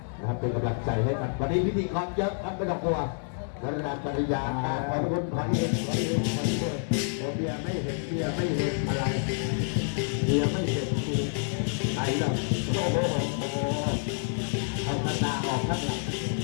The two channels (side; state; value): right; silent; 59 dB below the other